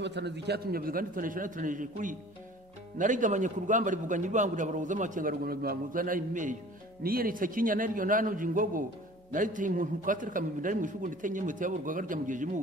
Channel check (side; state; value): both; normal; correlation 0.46